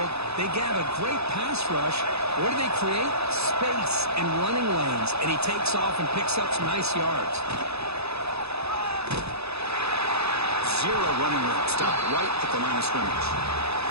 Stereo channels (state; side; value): late; left; 0.79 ms